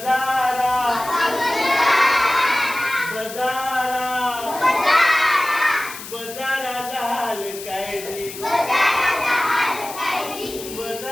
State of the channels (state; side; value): noise; left; hiss, 12 dB below the sound